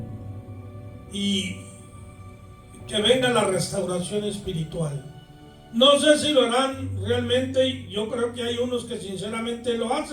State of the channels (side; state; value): both; identical; correlation 1.00